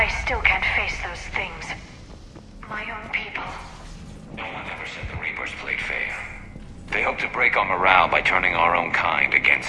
still can't face those things. My own people. No one ever said the Reapers played fair. They hope to break our morale by turning our own kind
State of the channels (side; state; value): both; identical; correlation 1.00